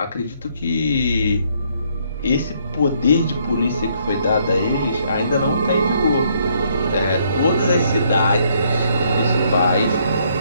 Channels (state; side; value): inverted; both; correlation -0.69